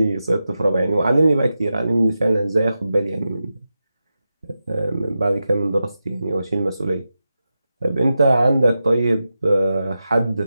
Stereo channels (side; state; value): both; inverted; correlation -0.91